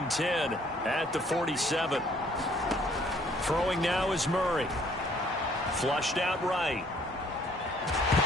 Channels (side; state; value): both; normal; correlation 0.61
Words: 10 at the 47. Throwing now is Murray. Flushed out right.